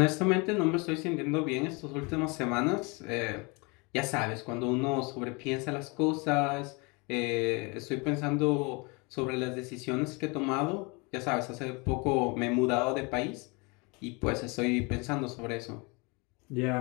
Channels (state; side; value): quieter; right; 29.2 dB